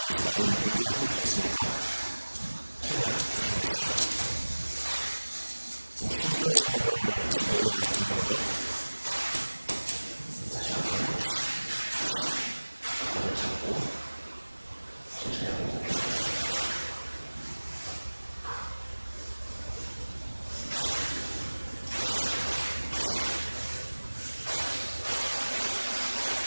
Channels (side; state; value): both; inverted; correlation -1.00